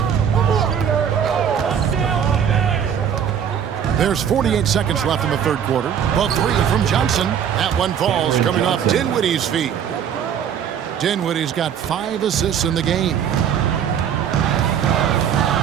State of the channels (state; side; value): quieter; left; 8.4 dB